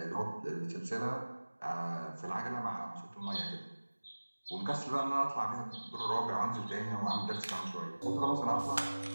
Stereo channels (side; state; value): both; inverted; correlation -1.00